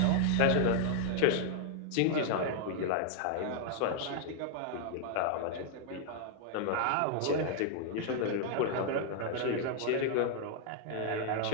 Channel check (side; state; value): both; different; correlation 0.00